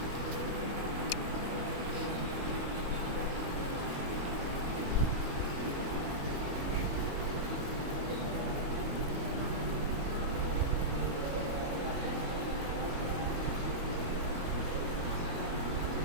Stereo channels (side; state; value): left; late; 22 ms